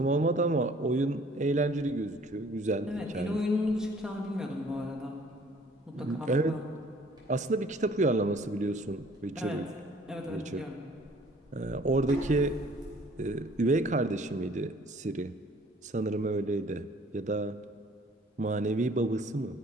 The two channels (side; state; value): both; normal; correlation 0.55